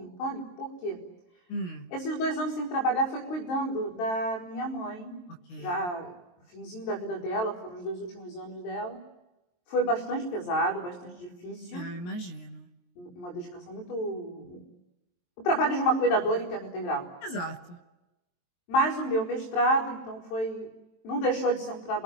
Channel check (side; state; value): right; late; 23 ms